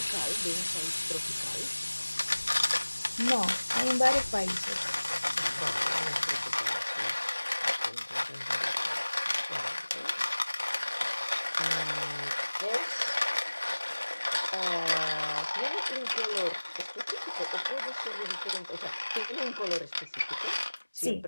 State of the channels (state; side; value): inverted; both; correlation -1.00